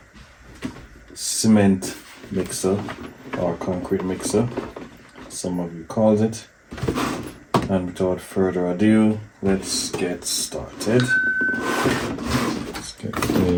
cement mixer or concrete mixer, some of you call it. And without further ado, let's get started. Let's get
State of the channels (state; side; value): identical; both; correlation 1.00